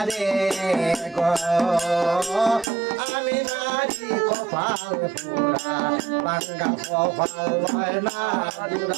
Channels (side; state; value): left; drops out; at 2.7 s